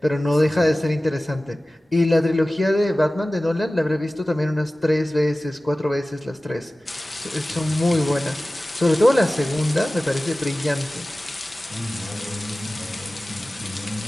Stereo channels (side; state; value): both; normal; correlation 0.97